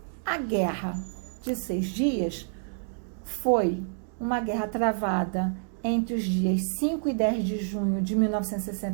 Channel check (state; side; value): silent; left; digital silence